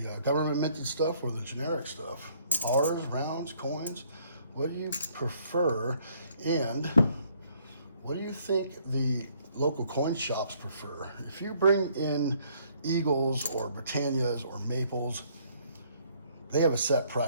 government minted stuff or the generic stuff? Bars, rounds, coins? What do you prefer? And what do you think the local coin shops prefer? If you bring in Eagles or Britannias or Maples, they have a set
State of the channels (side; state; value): both; inverted; correlation -0.64